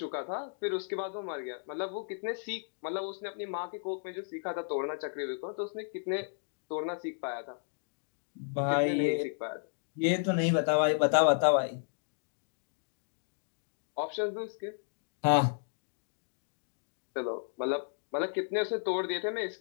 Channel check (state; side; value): silent; right; digital silence